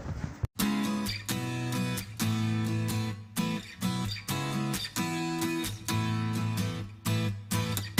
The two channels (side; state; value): both; identical; correlation 1.00